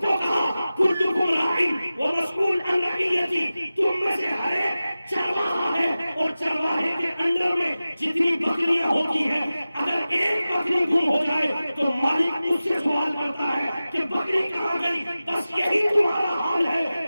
کو کہا کلکم راعٍ ومسئول عن رعیتہ. تم میں سے ہر ایک چرواہا ہے اور چرواہے کے انڈر میں جتنی بکریاں ہوتی ہیں اگر ایک بکری گم ہو جائے تو مالک اس سے سوال کرتا ہے کہ بکری کہاں گئی. بس یہی تمہارا حال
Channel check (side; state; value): both; inverted; correlation -0.95